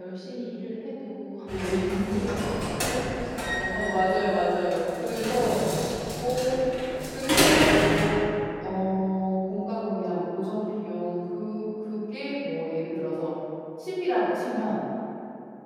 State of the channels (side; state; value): both; identical; correlation 1.00